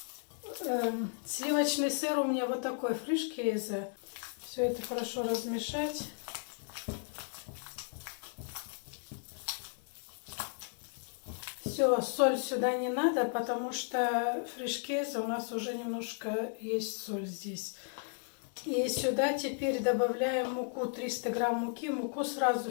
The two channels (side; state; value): right; silent; 55 dB below the other